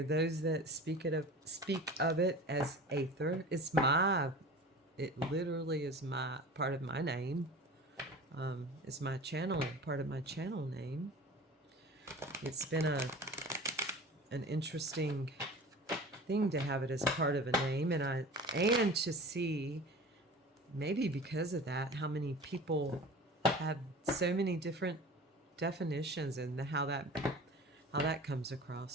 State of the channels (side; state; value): both; normal; correlation 0.38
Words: those that speak of it as aether. It literally is my part of my name. It's my channel, part of my channel name. It's been an interesting thing to have it as part of a name, and to see, maybe because of that, how many people have so many different definitions, and how that comes